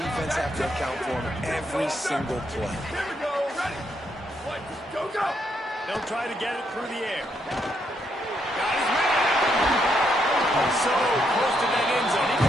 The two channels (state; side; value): normal; both; correlation 0.76